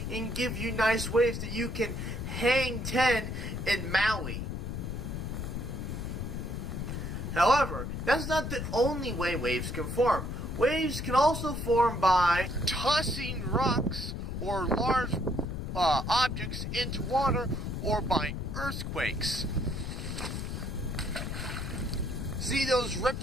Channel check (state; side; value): noise; left; rumble, 4 dB below the sound